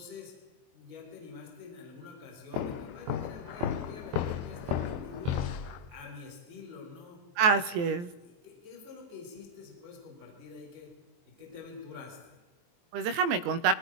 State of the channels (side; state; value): left; late; 23 ms